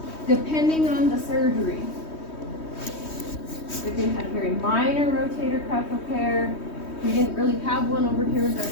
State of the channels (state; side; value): late; right; 3.2 ms